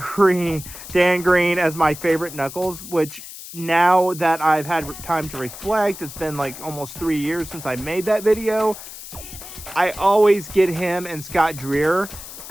as my favorite Knuckles, which now that I've had time to reflect, it's been like almost 3 years since I made that video, I always get him and Scott Dreer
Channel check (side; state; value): left; noise; hiss, 13 dB below the sound